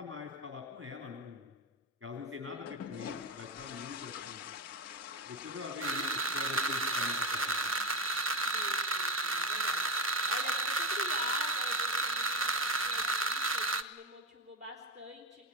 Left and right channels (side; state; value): both; normal; correlation 0.16